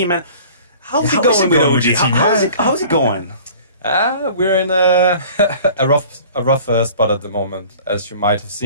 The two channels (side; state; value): both; inverted; correlation -0.46